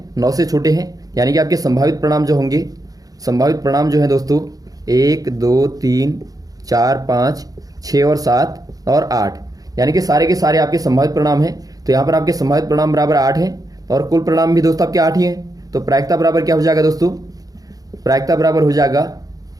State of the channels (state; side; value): late; left; 0.18 ms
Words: 9 से छोटे हैं, यानी कि आपके संभावित परिणाम जो होंगे, संभावित परिणाम जो है दोस्तों 1 2 3 4 5 6 और 7 और 8, यानी कि सारे के सारे आपके संभावित परिणाम हैं। तो यहाँ पर आपके संभावित परिणाम बराबर 8 है और कुल परिणाम भी दोस्तों आपके 8 ही हैं। तो प्रायिकता बराबर क्या हो जाएगा दोस्तों, प्रायिकता बराबर हो जाएगा